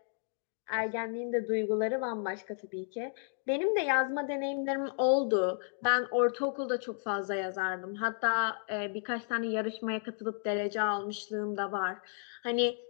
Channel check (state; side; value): silent; right; digital silence